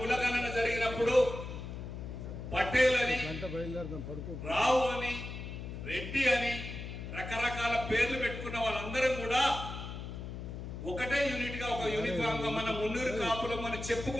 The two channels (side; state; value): left; noise; hum, 8 dB below the sound